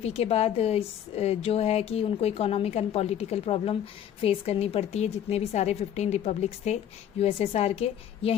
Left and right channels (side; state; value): right; quieter; 9.9 dB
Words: के बाद जो है कि उनको economic and political problem face करनी पड़ती है, जितने भी सारे 15 रिपब्लिक्स थे यूएसएसआर के.